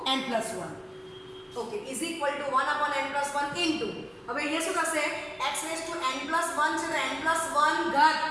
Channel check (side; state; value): both; identical; correlation 1.00